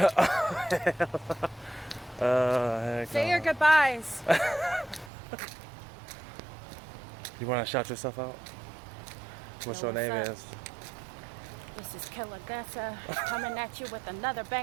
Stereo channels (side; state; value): left; drops out; at 5.1 s